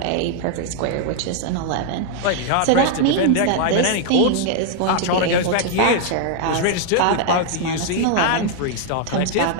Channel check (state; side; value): different; both; correlation 0.00